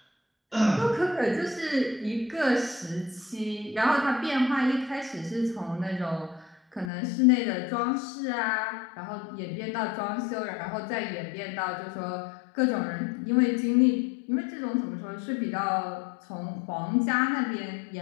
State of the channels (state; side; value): drops out; right; at 6.9 s